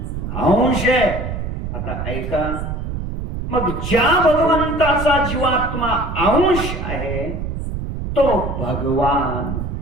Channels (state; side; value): noise; right; rumble, 5 dB below the sound